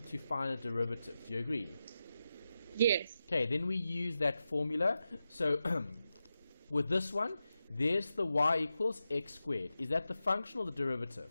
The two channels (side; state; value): both; inverted; correlation -0.91